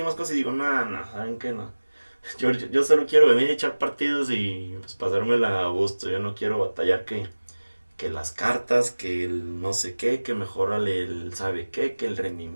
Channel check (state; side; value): inverted; both; correlation -1.00